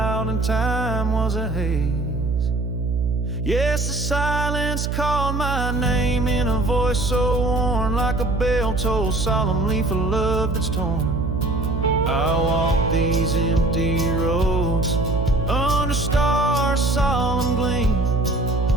and time was a haze. Yes, the silence called my name in a voice so worn, like a bell tolled solemnly for love that's torn. I walk these empty roads under stars' solemn gleam,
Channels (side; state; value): right; noise; hum, 1 dB below the sound